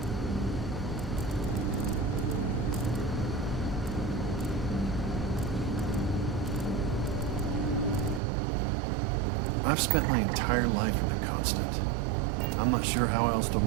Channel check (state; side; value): drops out; left; at 8.2 s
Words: I've spent my entire life in the Constant. I'm not sure how else to